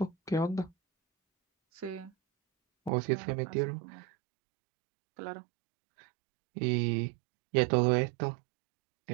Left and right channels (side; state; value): left; drops out; at 2.9 s